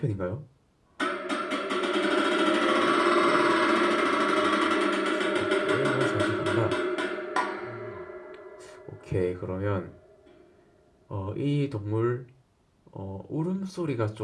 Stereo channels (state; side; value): identical; both; correlation 1.00